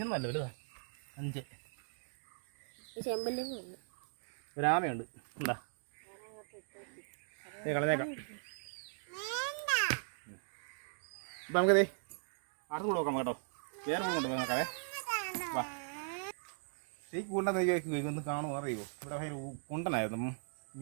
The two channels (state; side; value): silent; left; digital silence